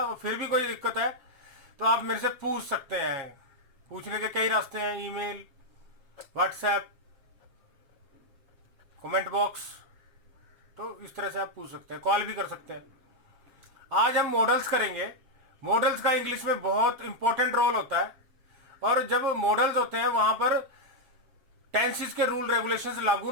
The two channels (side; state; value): left; late; 7.4 ms